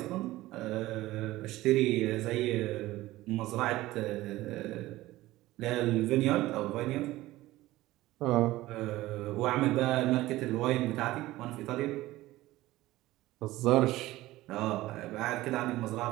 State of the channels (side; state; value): left; quieter; 17.2 dB